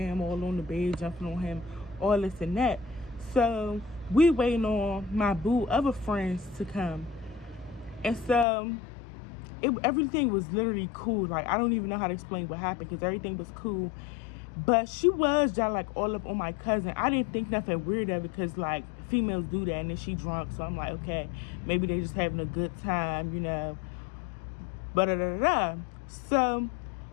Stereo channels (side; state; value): right; drops out; at 8.5 s